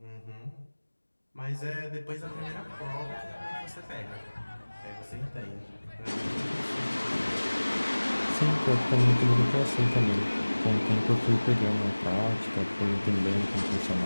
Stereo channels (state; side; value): inverted; both; correlation -1.00